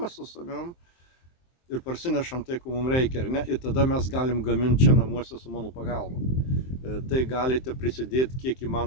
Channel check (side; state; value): right; late; 23 ms